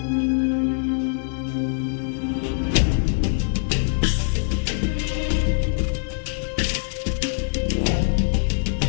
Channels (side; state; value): right; silent; digital silence